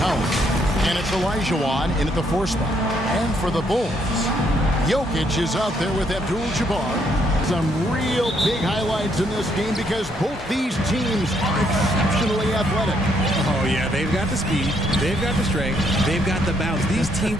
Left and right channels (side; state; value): both; normal; correlation 0.72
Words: out. And it's Elijah in at the 4 spot. And for the Bulls, Jokic is out there with Abdul-Jabbar. Some real big highlights in this game because both these teams are exceptionally athletic. Oh, yeah, they've got the speed, they've got the strength, they've got the bounce. These